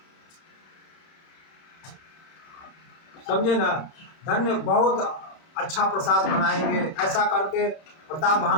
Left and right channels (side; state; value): right; late; 31 ms